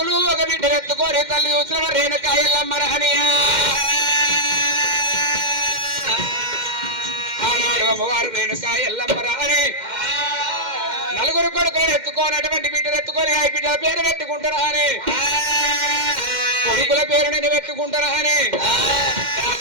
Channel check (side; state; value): left; late; 2.1 ms